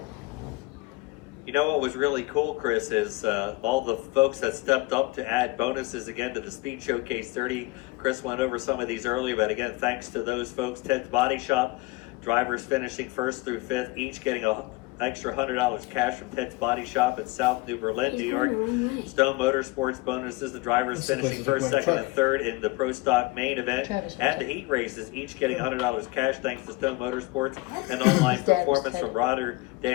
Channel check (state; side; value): quieter; right; 22.0 dB